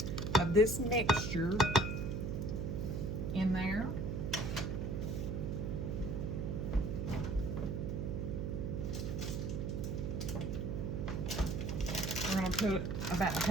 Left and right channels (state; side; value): noise; right; hum, 2 dB below the sound